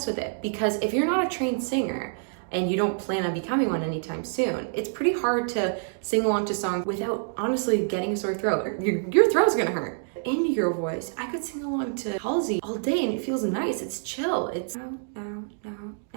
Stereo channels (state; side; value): silent; left; digital silence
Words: with it. Because if you're not a trained singer and you don't plan on becoming one anytime soon, it's pretty hard to sing along to songs without honestly getting a sore throat. Your throat's gonna hurt. Indie girl voice, I could sing along to Halsey all day and it feels nice, it's chill, it's now,